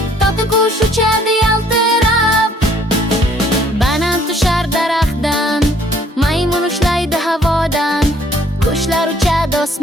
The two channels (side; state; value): both; normal; correlation 0.60